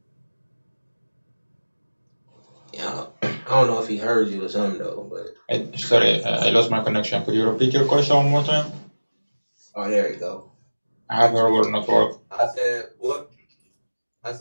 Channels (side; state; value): both; inverted; correlation -1.00